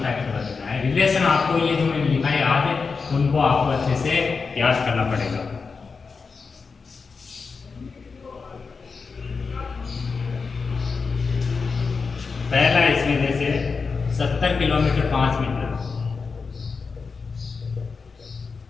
टाइप से बदलना है। रिलेशन आपको ये जो मैंने लिखा है आज उनको आपको अच्छे से याद करना पड़ेगा। पहला इसमें जैसे 70 किलोमीटर 5 मीटर,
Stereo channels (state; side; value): quieter; right; 4.9 dB